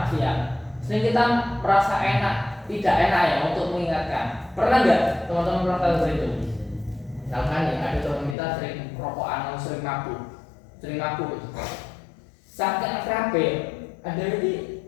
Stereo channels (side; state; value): right; drops out; at 8.3 s